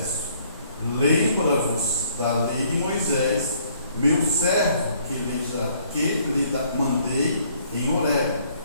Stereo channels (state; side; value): inverted; both; correlation -0.63